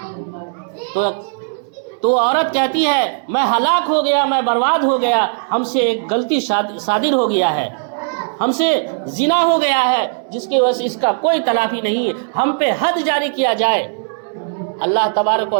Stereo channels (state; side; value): silent; left; 64 dB below the other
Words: تو عورت کہتی ہے میں ہلاک ہو گیا، میں برباد ہو گیا، ہم سے ایک غلطی صادر ہو گیا ہے، ہم سے زنا ہو گیا ہے جس کی وجہ سے اس کا کوئی تلافی نہیں ہے، ہم پہ حد جاری کیا جائے۔ اللہ تبارک و